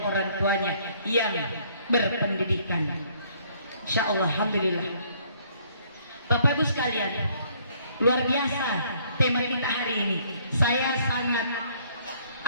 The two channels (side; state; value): both; inverted; correlation -0.63